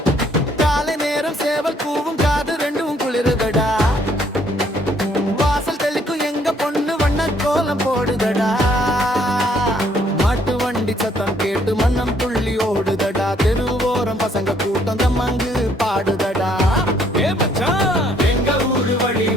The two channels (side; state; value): both; normal; correlation 0.66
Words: காலை நேரம் சேவல் கூவும் காது ரெண்டும் குளிருதடா வாசல் தெளிக்கும் எங்க பொண்ணு வண்ண கோலம் போடுதடா மாட்டு வண்டி சத்தம் கேட்டு மன்னம் துள்ளி ஓடுதடா தெருவோரம் பசங்க கூட்டம் தம்மங்கு பாடுதடா ஏ மச்சான் எங்க ஊரு வழி